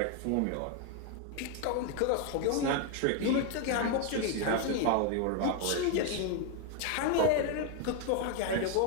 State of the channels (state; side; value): different; both; correlation 0.01